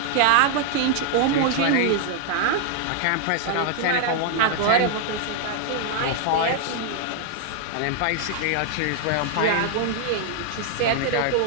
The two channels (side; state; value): both; different; correlation -0.01